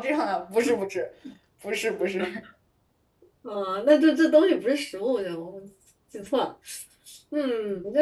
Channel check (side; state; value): both; identical; correlation 1.00